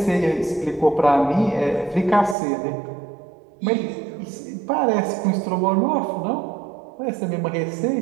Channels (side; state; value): left; drops out; at 2.4 s